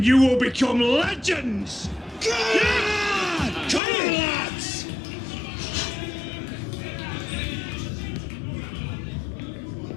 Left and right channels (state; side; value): drops out; right; at 3.8 s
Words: you will become legends! Yeah! Come on, lads!